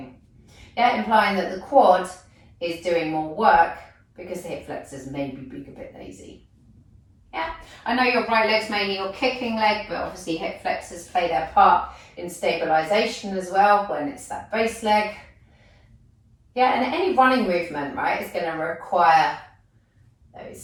Yeah, implying that the quad is doing more work because the hip flexors maybe being a bit lazy. Yeah, I know your right leg's mainly your kicking leg, but obviously hip flexors play their part in stabilization as well when it's that base leg. Yeah, and any running movement, right, is going to require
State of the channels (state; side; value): identical; both; correlation 1.00